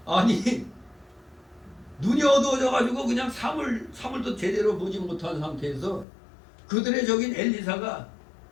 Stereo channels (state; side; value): drops out; right; at 6.1 s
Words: 아니 눈이 어두워져 가지고 그냥 사물도 제대로 보지 못한 상태에서 그들의 적인 엘리사가